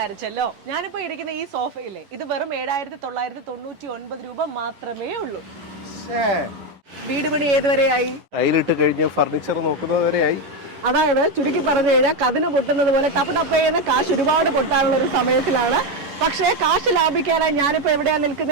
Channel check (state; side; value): late; left; 11 ms